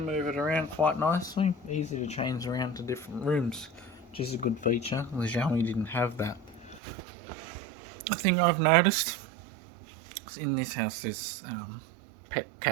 move it around quite nicely. Easy to change around to different rooms, which is a good feature. The Xiaomi didn't have that. The thing I've noticed is in this house there's pet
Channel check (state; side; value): drops out; left; at 6.8 s